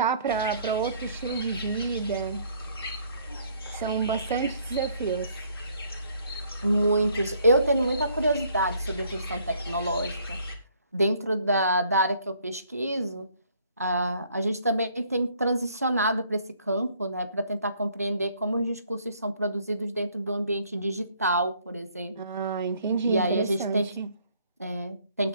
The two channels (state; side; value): inverted; both; correlation -0.63